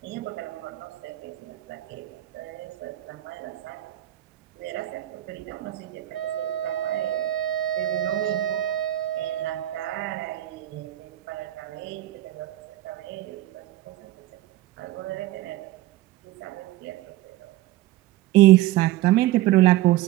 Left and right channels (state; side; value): quieter; left; 15.0 dB